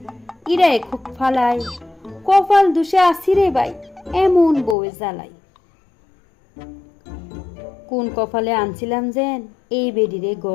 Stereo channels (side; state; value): right; drops out; at 4.8 s